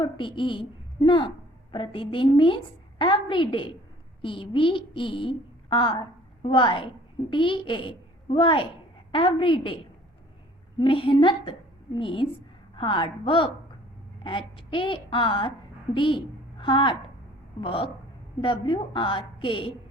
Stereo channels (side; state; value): both; normal; correlation 0.53